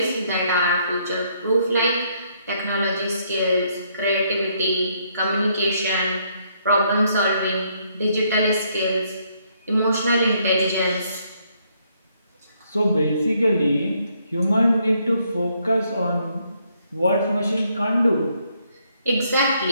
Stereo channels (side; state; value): both; inverted; correlation -0.71